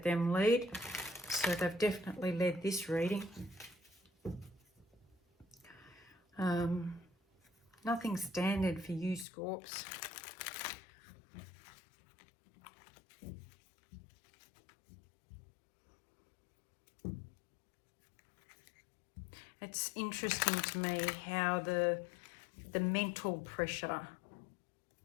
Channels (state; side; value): drops out; right; at 9.2 s